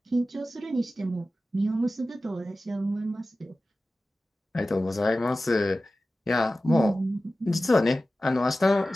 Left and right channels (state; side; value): normal; both; correlation 0.95